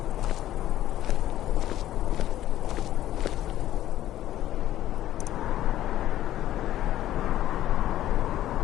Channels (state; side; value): quieter; right; 13.3 dB